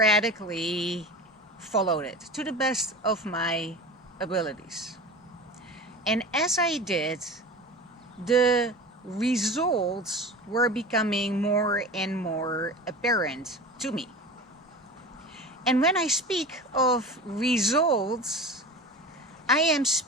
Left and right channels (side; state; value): both; normal; correlation 0.33